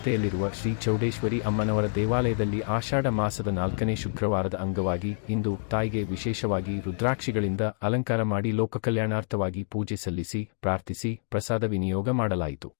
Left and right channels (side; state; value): right; silent; digital silence